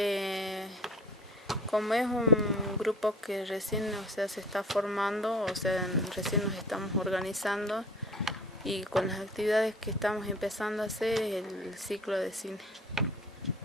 Como es un grupo que recién se está formando, recién nos estamos organizando y con las actividades que estamos empezando a hacer es el ciclo de cine.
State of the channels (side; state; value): both; normal; correlation 0.45